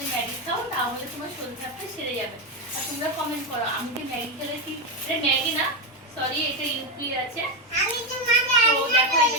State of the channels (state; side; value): normal; both; correlation 0.09